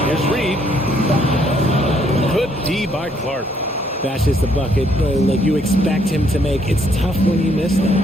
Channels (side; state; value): both; normal; correlation 0.69